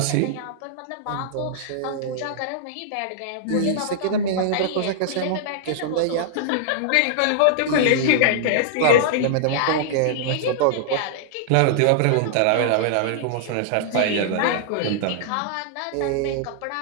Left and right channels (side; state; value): both; different; correlation -0.01